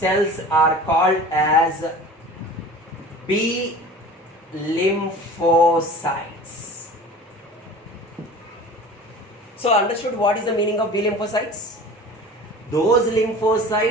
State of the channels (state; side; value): normal; both; correlation 0.40